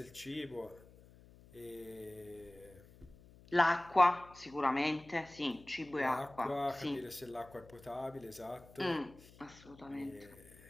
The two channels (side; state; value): left; noise; hum, 22 dB below the sound